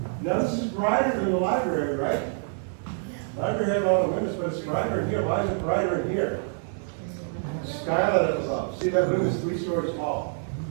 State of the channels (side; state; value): left; silent; digital silence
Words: Now this is brighter than the library, right? Library had all the windows, but it's brighter in here. Why is it brighter in here? Skylight up above. See, that room is 3 stories tall.